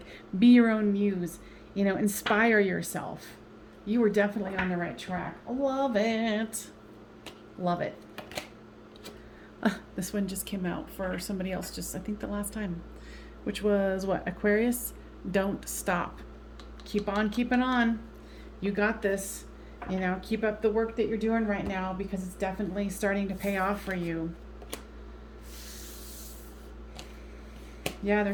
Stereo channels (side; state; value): both; identical; correlation 1.00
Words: be your own muse, you know, inspire yourself. You were definitely on the right track. Love it. Love it. This one just came out for somebody else just, I think, the last time, which was what? Aquarius, don't stop. Keep on keeping on. You got this. You know, keep up the work that you're doing right now, because it's definitely starting to pay off for you. Yeah,